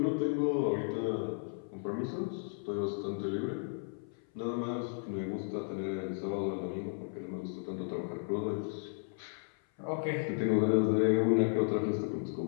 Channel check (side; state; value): right; silent; 55 dB below the other